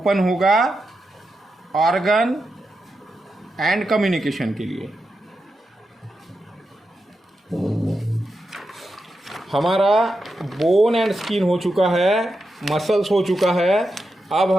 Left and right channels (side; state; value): both; normal; correlation 0.88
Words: होगा ऑर्गन एंड कम्युनिकेशन के लिए। हमारा बोन एंड स्किन हो चुका है, मसल्स हो चुका है। अब